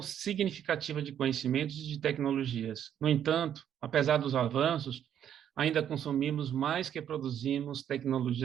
significativa de conhecimentos e de tecnologias. No entanto, apesar dos avanços, ainda consumimos mais que produzimos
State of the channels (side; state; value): left; quieter; 9.7 dB